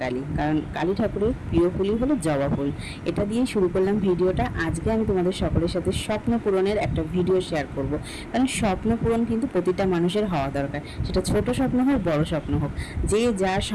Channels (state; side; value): identical; both; correlation 1.00